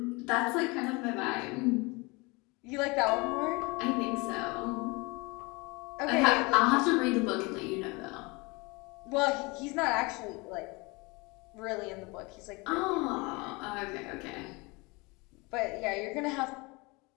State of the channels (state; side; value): quieter; right; 26.4 dB